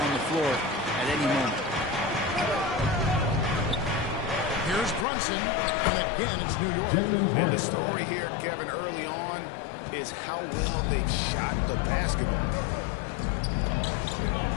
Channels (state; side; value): drops out; right; at 5.1 s